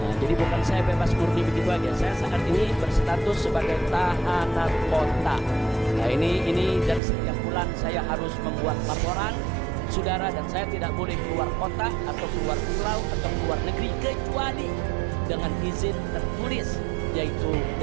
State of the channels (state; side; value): drops out; left; at 7.0 s